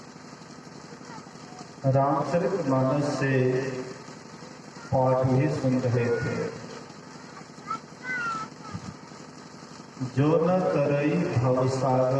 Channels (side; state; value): both; identical; correlation 1.00